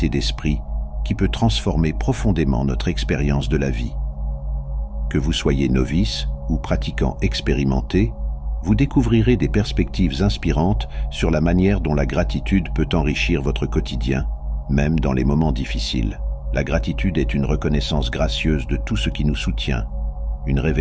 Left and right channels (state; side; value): identical; both; correlation 1.00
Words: d'esprit qui peut transformer profondément notre expérience de la vie. Que vous soyez novice ou pratiquant expérimenté, vous découvrirez des perspectives inspirantes sur la manière dont la gratitude peut enrichir votre quotidien, même dans les moments difficiles. La gratitude est une reconnaissance gracieuse de tout ce qui nous soutient, une